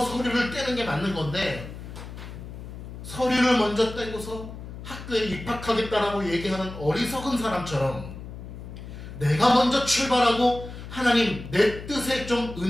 서류를 떼는 게 맞는 건데 서류를 먼저 떼고서 학교에 입학하겠다라고 얘기하는 어리석은 사람처럼 내가 먼저 출발하고 하나님 내 뜻에 좀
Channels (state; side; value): noise; left; hum, 11 dB below the sound